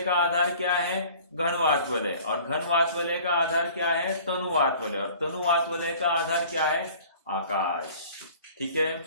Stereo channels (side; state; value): both; inverted; correlation -0.48